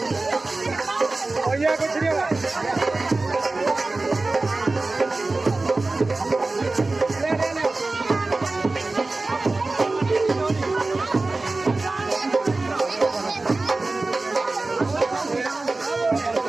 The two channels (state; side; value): quieter; left; 3.3 dB